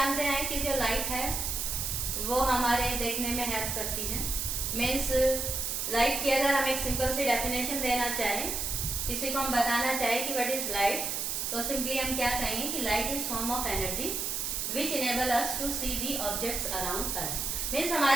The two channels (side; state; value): right; noise; hiss, 1 dB below the sound